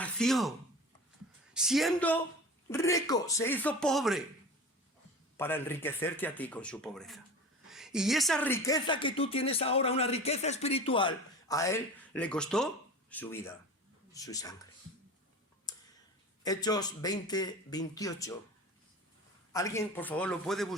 siendo rico, se hizo pobre para enriquecerte a ti con su pobreza. Y esa riqueza que tú tienes ahora, una riqueza espiritual, a Él le costó su vida, su sangre. Hechos 20, 28. Alguien, por favor, lo puede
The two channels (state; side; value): normal; both; correlation 0.35